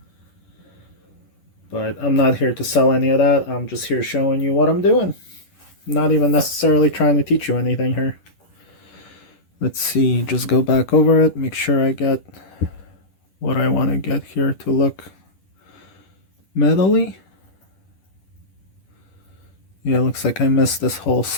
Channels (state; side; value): late; right; 10 ms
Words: But I'm not here to sell any of that. I'm just here showing you what I'm doing. Not even necessarily trying to teach you anything here. Let's see, just go back over it, make sure I get what I want to get here to look metally. Yeah, looks like I missed this whole